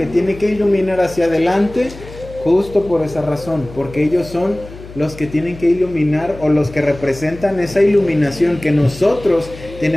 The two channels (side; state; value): left; noise; hum, 16 dB below the sound